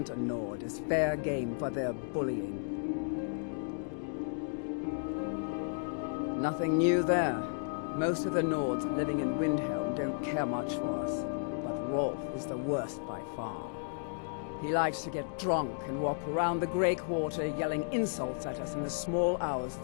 a Nord is fair game for their bullying. Nothing new there. Most of the Nords living in Windhelm don't care much for us, but Rolf is the worst by far. He likes to get drunk and walk around the Grey Quarter yelling insults at us in the small hours of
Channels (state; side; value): silent; right; digital silence